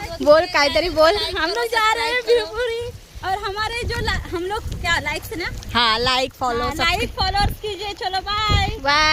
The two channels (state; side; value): identical; both; correlation 1.00